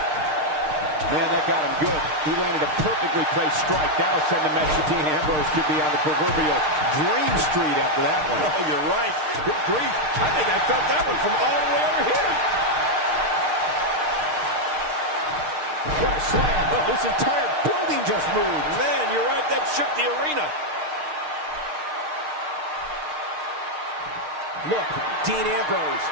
Man, that got him good. He landed a perfectly placed strike. That'll send a message to Dean Ambrose could be on the proverbial dream street after that one. Oh, you're right. Good grief. I think I felt that one from all the way over here. What a slam. Oh, this entire building just moved. Man, you're right. That shook the arena. Look, Dean Ambrose.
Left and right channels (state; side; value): late; left; 6.6 ms